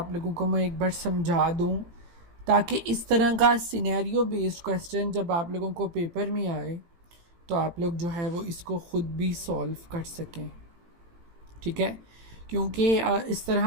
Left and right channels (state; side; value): late; left; 18 ms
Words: लोगों को मैं एक बार समझा दूं, ताकि इस तरह का सिनेरियो बेस्ड क्वेश्चन जब आप लोगों को पेपर में आए तो आप लोग जो है वो इसको ख़ुद भी सॉल्व कर सकें। ठीक है, क्योंकि इस